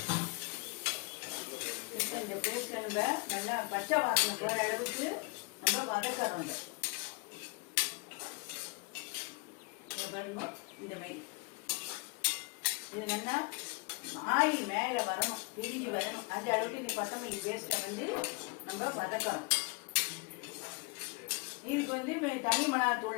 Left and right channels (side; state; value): right; quieter; 30.1 dB